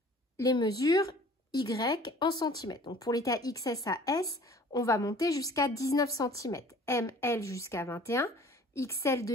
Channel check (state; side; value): normal; both; correlation 0.49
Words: les mesures Y en centimètres. Donc pour les tailles XS à S, on va monter jusqu'à 19 cm, M, L jusqu'à 21, XL,